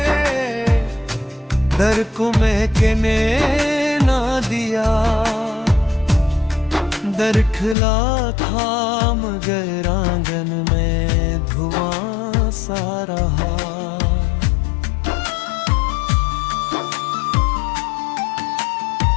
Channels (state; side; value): drops out; right; at 7.8 s